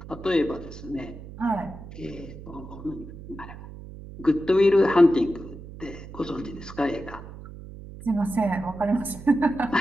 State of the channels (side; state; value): right; noise; hum, 14 dB below the sound